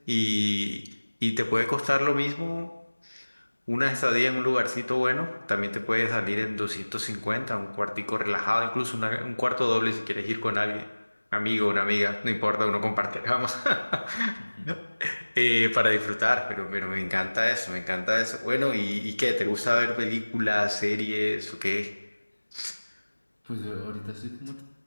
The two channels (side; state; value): both; inverted; correlation -1.00